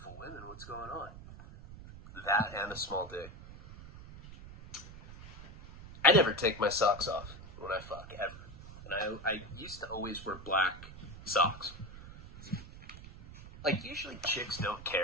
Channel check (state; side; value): noise; right; rumble, 15 dB below the sound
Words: women. What's going on? That and a small dick. I never take my socks off when I fuck, And I used to always wear black socks. Like, usually chicks don't